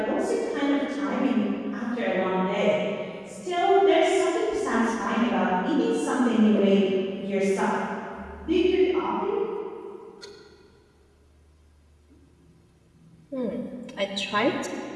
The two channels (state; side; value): identical; both; correlation 1.00